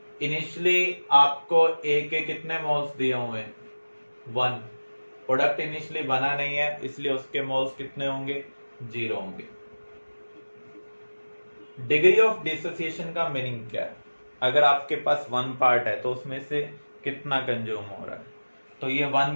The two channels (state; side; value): inverted; both; correlation -1.00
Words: इनिशियली आपको A के कितने मोल्स दिए हुए हैं, 1. प्रोडक्ट इनिशियली बना नहीं है इसलिए उसके मोल्स कितने होंगे, 0 होंगे. डिग्री ऑफ डिसोसिएशन का मीनिंग क्या है, अगर आपके पास 1 पार्ट है तो उसमें से कितना कंज्यूम हो रहा है. तो ये 1